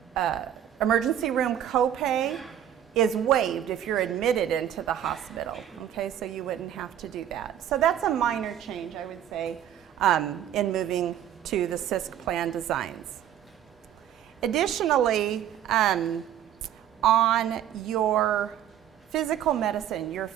emergency room copay is waived if you're admitted into the hospital, okay, so you wouldn't have to do that. So that's a minor change, I would say, in moving to the CISC plan designs. Additionally, on your physical medicine, your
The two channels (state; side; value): quieter; left; 10.6 dB